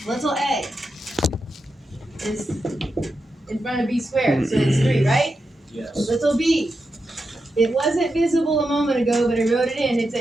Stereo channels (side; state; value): both; normal; correlation 0.88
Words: Little a is in front of b squared, so it's 3, right? Yes. Little b. It wasn't visible a moment ago, but I wrote it in. It's